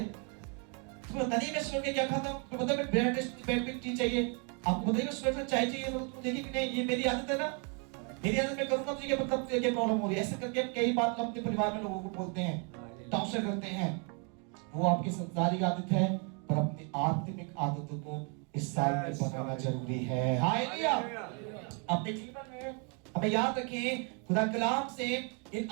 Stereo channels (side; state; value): left; quieter; 36.7 dB